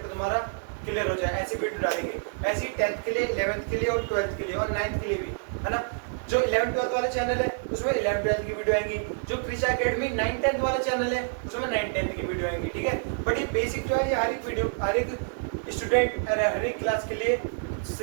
तुम्हारा क्लियर हो जाए, ऐसी वीडियो डालेंगे। ऐसी 10th के लिए, 11th के लिए और 12th के लिए और 9th के लिए भी, है ना। जो 11th-12th वाले चैनल है उसमें 11th-12th की वीडियो आएंगी, जो कृषा एकेडमी 9th-10th वाले चैनल है उसमें 9th-10th की वीडियो आएंगी, ठीक है। बट ये बेसिक जो है ये हर एक वीडियो, हर एक स्टूडेंट, हर एक क्लास के लिए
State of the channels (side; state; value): left; silent; digital silence